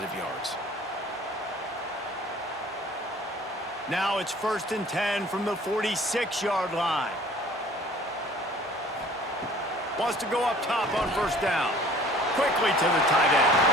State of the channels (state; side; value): normal; both; correlation 0.51